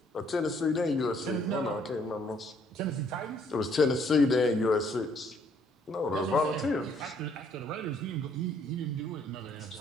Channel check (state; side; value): normal; both; correlation 0.65